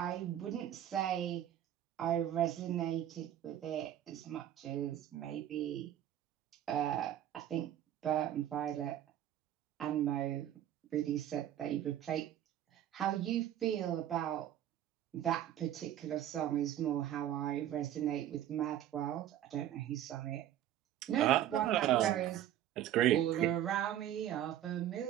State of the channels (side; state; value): left; quieter; 11.7 dB